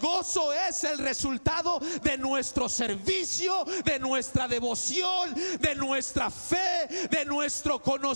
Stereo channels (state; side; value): inverted; both; correlation -1.00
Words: es el resultado de nuestro servicio, de nuestra devoción, de nuestra fe, de nuestro